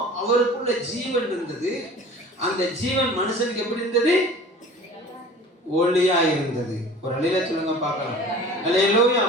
அவருக்குள்ள ஜீவன் இருந்தது. அந்த ஜீவன் மனுஷனுக்கு எப்படி இருந்தது? ஒளியா இருந்தது. ஒரு அல்லேலூயா சொல்லுங்க பார்க்கலாம். அல்லேலூயா.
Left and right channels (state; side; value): normal; both; correlation 0.43